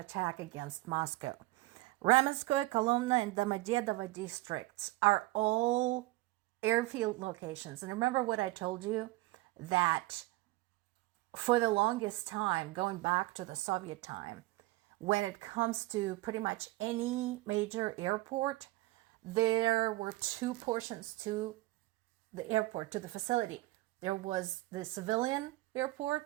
against Moscow. Ramenskoye, Kolomna, and Domodedovo districts are all airfield locations. And remember what I told you? That for the longest time, going back to the Soviet time, when it comes to pretty much any major airport, there were 2 portions to the airport, to the facility. There was the civilian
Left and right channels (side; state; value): left; quieter; 19.4 dB